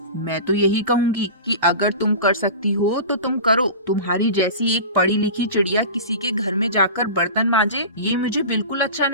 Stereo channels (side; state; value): both; inverted; correlation -0.32